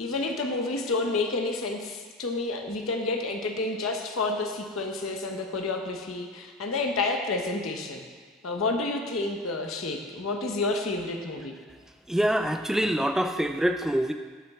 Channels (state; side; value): normal; both; correlation 0.41